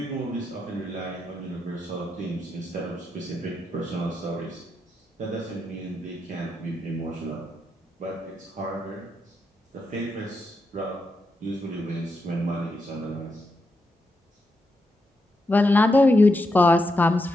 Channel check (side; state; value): both; normal; correlation 0.84